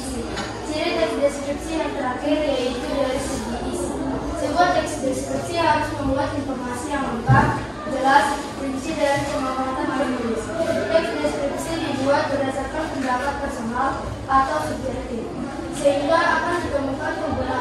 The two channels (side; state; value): both; identical; correlation 1.00